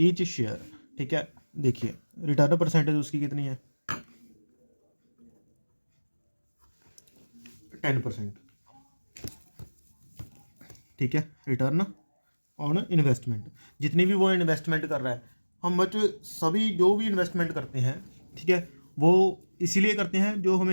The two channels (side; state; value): both; inverted; correlation -1.00